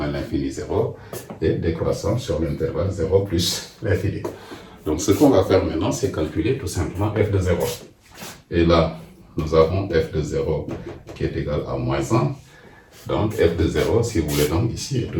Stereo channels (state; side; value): identical; both; correlation 1.00